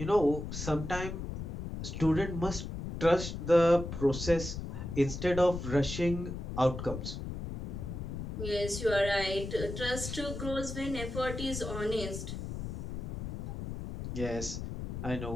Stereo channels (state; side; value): noise; left; rumble, 6 dB below the sound